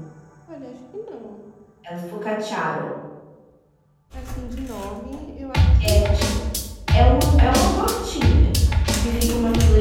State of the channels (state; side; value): identical; both; correlation 1.00